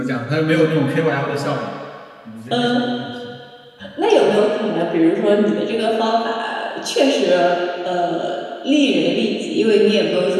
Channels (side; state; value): both; identical; correlation 1.00